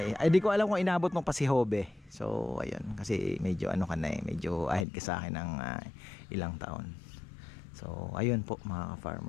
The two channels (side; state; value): right; drops out; at 4.9 s